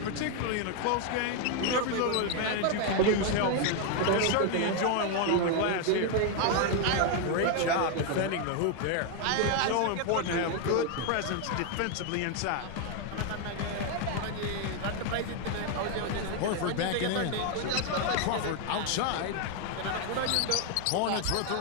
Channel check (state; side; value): different; both; correlation 0.01